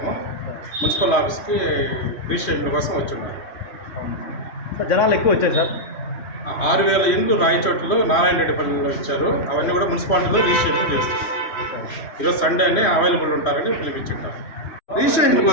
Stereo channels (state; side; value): late; right; 3.1 ms